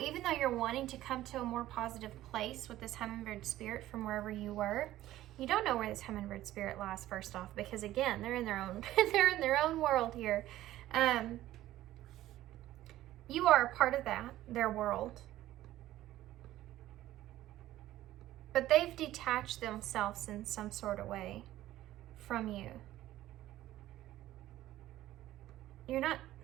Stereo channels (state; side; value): quieter; left; 14.6 dB